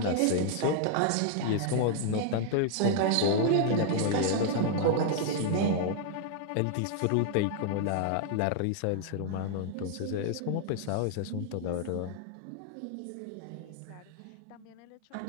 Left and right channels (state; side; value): different; both; correlation 0.00